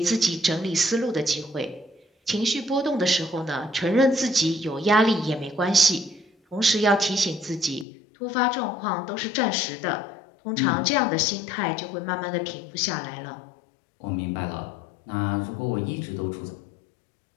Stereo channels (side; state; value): right; drops out; at 7.9 s